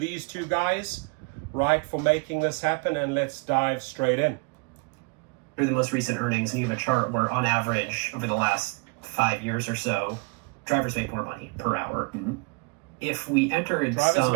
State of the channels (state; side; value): quieter; left; 31.4 dB